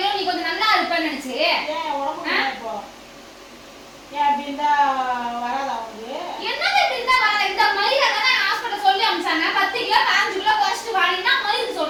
நீ கொஞ்சம் நல்லா இருப்பேன்னு நினைச்சு. ஏன் உடம்பு இப்போ ஏன் அப்படி இருந்தா வராதா உனக்கு? என்னது இப்படி இருந்தா வர? இந்த மயிரை தானே ஹாஸ்பிட்டல் சொல்லி அனுப்பிச்சாங்க. 10 கிலோ 5 கிலோ குறைச்சிட்டு வாடினா மயிறு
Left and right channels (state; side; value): identical; both; correlation 1.00